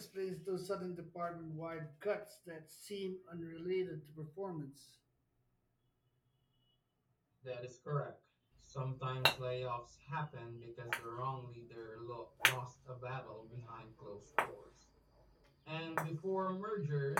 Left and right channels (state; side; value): identical; both; correlation 1.00